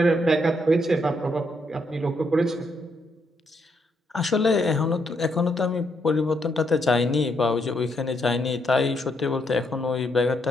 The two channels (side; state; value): both; normal; correlation 0.76